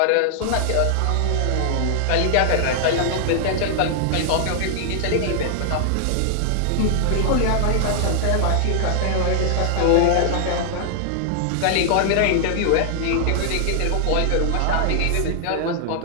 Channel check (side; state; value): both; different; correlation -0.01